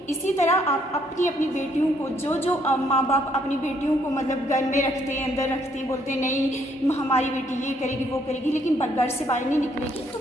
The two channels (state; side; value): normal; both; correlation 0.69